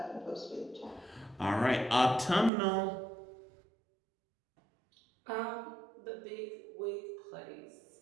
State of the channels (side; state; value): left; drops out; at 2.5 s